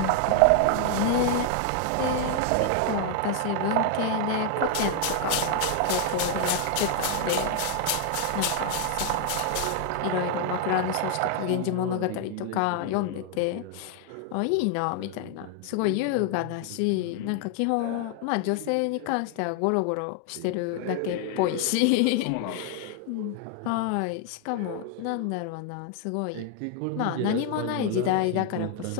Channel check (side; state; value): both; different; correlation 0.00